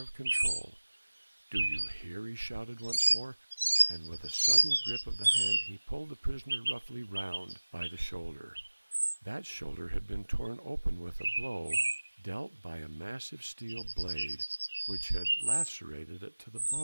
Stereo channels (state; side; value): inverted; both; correlation -1.00